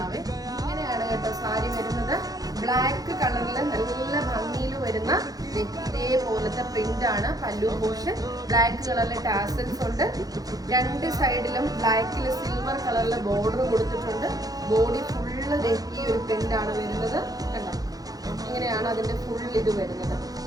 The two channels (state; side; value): late; left; 0.18 ms